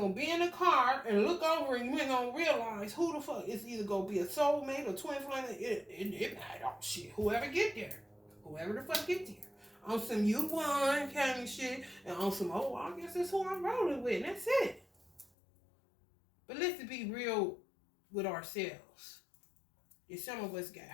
be in the car and look over and you ain't gonna realize who the fuck is either gonna be a soulmate or twin flame. It oh shit. Whoever get there. Whoever the fuck get there. On some you won kind of shit. And on some, oh, I guess that's who I'm rolling with. And that's it. But let's be real with ourselves. If some of us got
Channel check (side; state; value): right; drops out; at 15.3 s